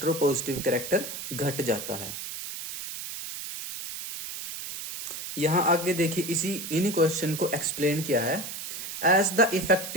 कैरेक्टर घट जाता है। यहां आगे देखिए इन्हीं क्वेश्चन को एक्सप्लेन किया है। As the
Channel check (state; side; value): noise; right; hiss, 8 dB below the sound